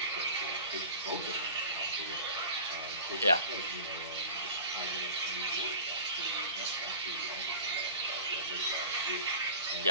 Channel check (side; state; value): both; inverted; correlation -0.39